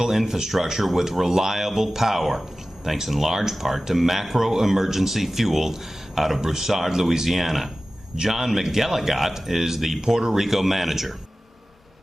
infrastructure with reliable power, thanks in large part to Macro Emergency Fuel out of Broussard, Louisiana. John McGilligot is the Puerto Rico manager.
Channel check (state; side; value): normal; both; correlation 0.96